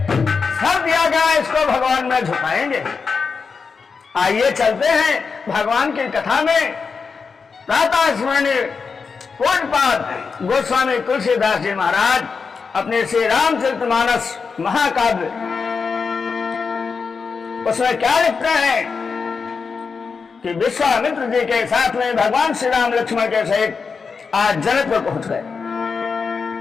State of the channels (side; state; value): right; quieter; 5.2 dB